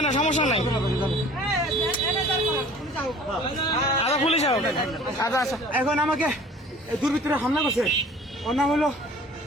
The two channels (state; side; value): normal; both; correlation 0.48